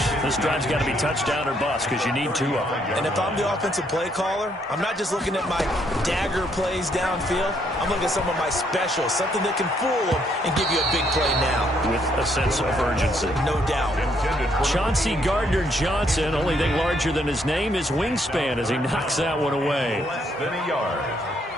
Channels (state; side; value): normal; both; correlation 0.71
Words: this drive's got to be touchdown or bust because you need 2 of them. And if I'm the offensive play caller, I'm not just looking at my dagger plays downfield. I'm looking at some of my specials, something that can fool them and give you a big play now. With a sense of urgency. No doubt. Chauncey Gardner-Johnson, only thing larger than his name is wingspan as he knocks that one away. Less than a yard.